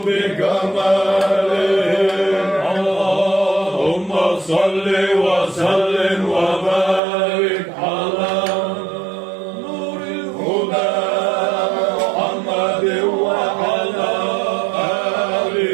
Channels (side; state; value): left; drops out; at 7.0 s